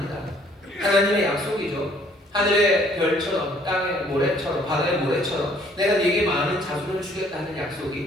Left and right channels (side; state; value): both; normal; correlation 0.61